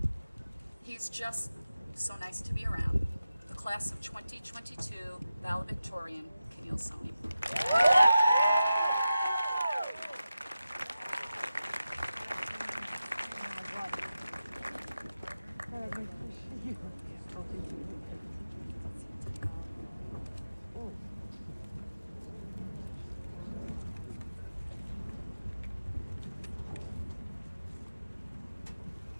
He's just so nice to be around. The class of 2022 Valedictorian, Keneil Soni.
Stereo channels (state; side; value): inverted; both; correlation -0.92